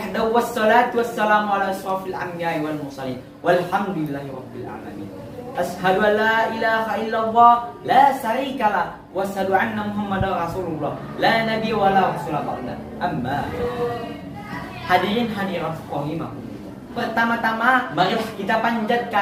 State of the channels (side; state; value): both; identical; correlation 1.00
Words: wassalatu wassalamu ala asrafil anbiya'i wal mursalin. Walhamdulillahi rabbil alamin. Ashhadu an la ilaha illallah la syarikalah wa asyhadu anna Muhammadar Rasulullah la nabiyya wa la rasula ba'da. Amma hadirin hadirat rahimakumullah. Pertama-tama marilah kita